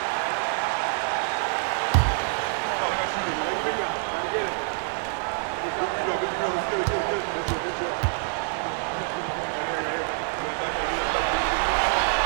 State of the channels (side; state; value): left; silent; 57 dB below the other